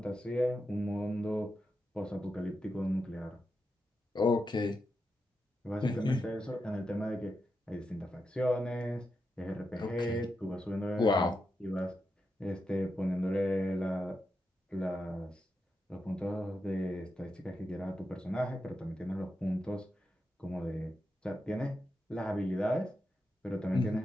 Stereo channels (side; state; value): both; normal; correlation 0.87